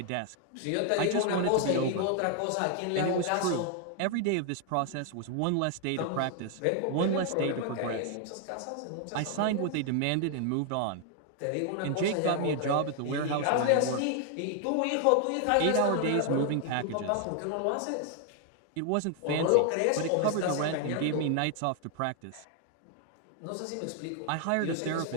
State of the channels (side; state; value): both; different; correlation 0.00